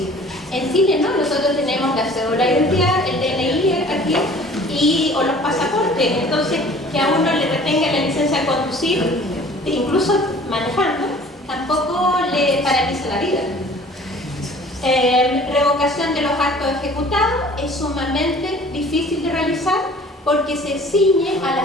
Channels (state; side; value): normal; both; correlation 0.49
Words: En Chile no, nosotros tenemos la cédula de identidad, el DNI aquí, o los pasaportes. Entonces, que a uno le retenga la licencia de conducir, incluso manejando, tampoco le paraliza la vida. Revocación de los actos ejecutados es sumamente difícil de realizar porque se ciñe a